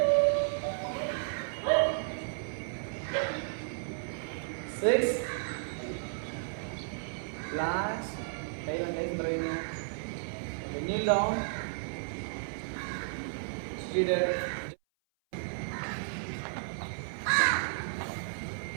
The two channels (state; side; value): silent; left; 56 dB below the other